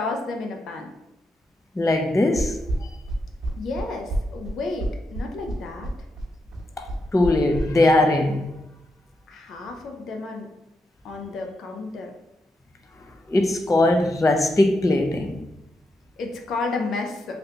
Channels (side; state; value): both; normal; correlation 0.84